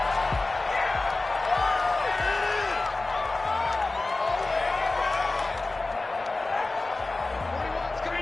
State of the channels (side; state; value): right; quieter; 3.3 dB